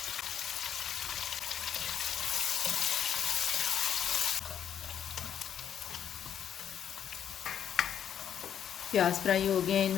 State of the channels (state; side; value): quieter; right; 9.1 dB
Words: प्याज फ्राई हो गए,